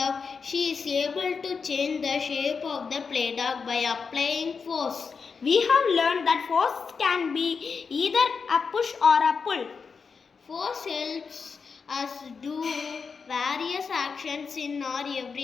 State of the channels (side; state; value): right; quieter; 5.4 dB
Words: She is able to change the shape of the play dog by applying force. We have learned that force can be either a push or a pull. Force helps us do various actions in our